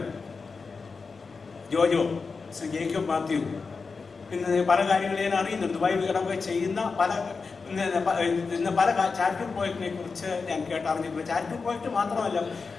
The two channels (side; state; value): right; quieter; 4.7 dB